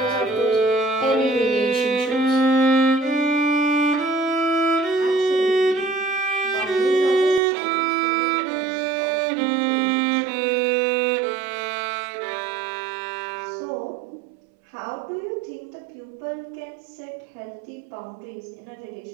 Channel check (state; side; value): drops out; left; at 7.4 s